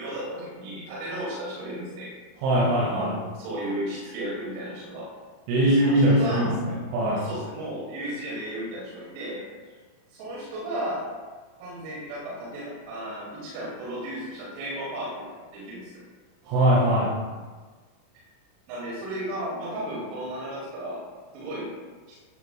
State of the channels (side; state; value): left; late; 38 ms